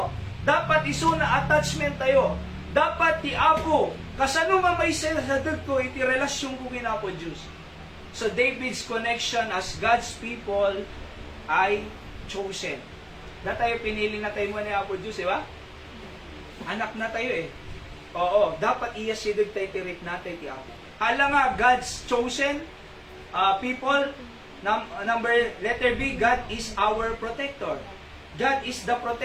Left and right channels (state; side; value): identical; both; correlation 1.00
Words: Dapat isuna attachment tayo. Dapat ti Apo, kasano nga may sadag ko iti relasyon ko kin Apo Diyos. So David's connection as God's people ay chosen. Na tayo pinili na tayo mo ni Apo Diyos, di ba? Anak na tayo eh. Oo, dapat iyasidog tayo tirik natin ti Apo. Hala nga, God's chosen people. Letter B, God is our protector. God is the